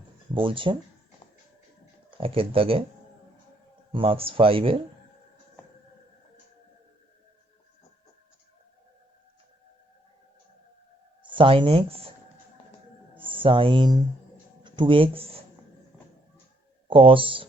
বলছে, একের দাগে marks 5-এর sin x sin 2x cos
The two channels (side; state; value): both; normal; correlation 0.70